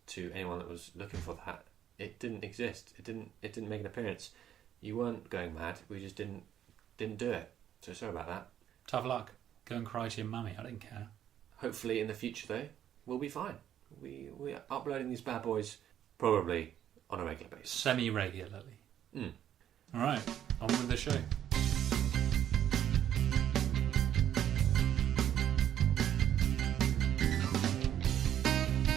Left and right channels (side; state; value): left; quieter; 10.5 dB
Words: to anyone that was looking for that. It didn't exist. It didn't make an appearance. You weren't going mad. We just didn't do it. So sorry about that. Tough luck. Go and cry to your mummy. I don't care. Hopefully in the future though, we'll be fine. We are uploading these bad boys probably on a regular basis. Semi-regularly. Alright, on with the show.